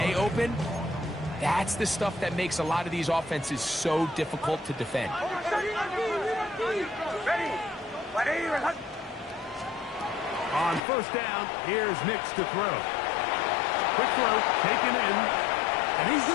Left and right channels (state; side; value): drops out; right; at 10.8 s